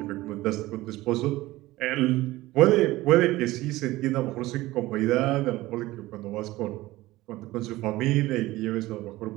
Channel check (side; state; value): left; quieter; 18.0 dB